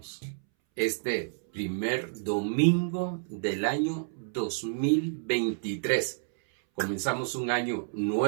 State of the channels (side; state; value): left; silent; 58 dB below the other